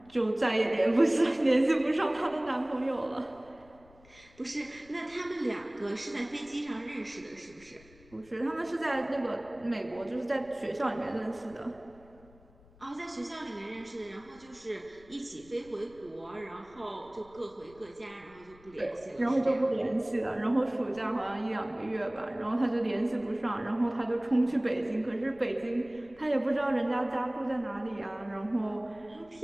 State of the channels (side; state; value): left; noise; rumble, 26 dB below the sound